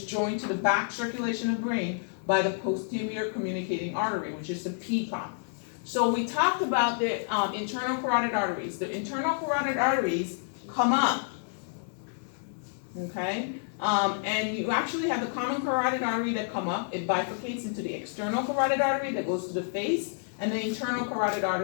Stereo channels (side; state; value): right; silent; digital silence